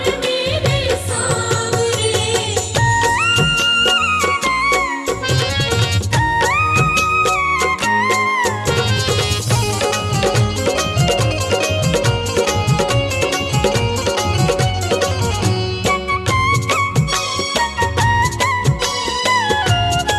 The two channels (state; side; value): identical; both; correlation 1.00